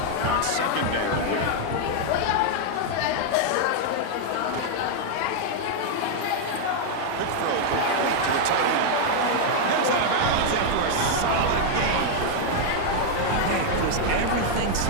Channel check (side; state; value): both; different; correlation 0.00